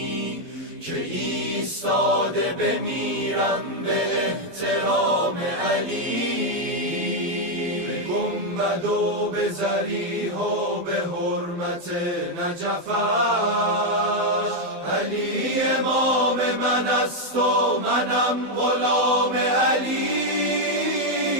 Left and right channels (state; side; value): late; left; 12 ms